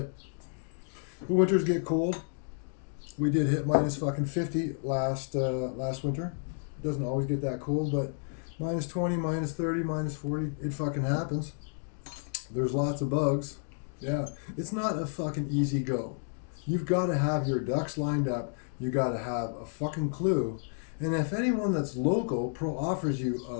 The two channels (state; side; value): silent; right; digital silence